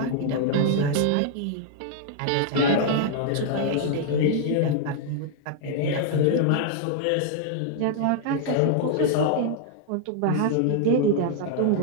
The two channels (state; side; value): different; both; correlation -0.01